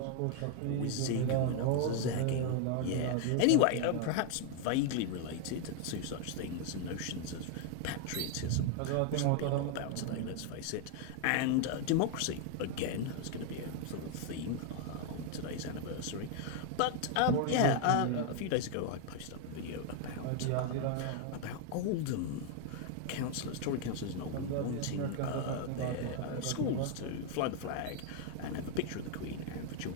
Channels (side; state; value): both; different; correlation 0.00